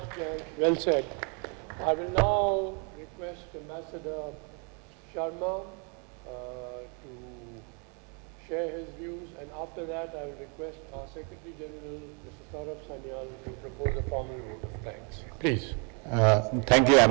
Well said. I will now request Ambassador Sharma to share his views, and after that I will request our Secretary General, Mr. Saurabh Sanyal, to propose a formal vote of thanks. Please. Thank you,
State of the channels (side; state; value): left; quieter; 36.6 dB